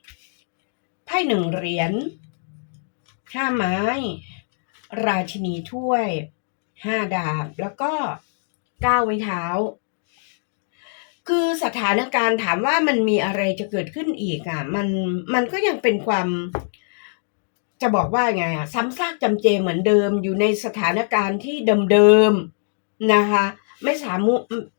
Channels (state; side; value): silent; right; digital silence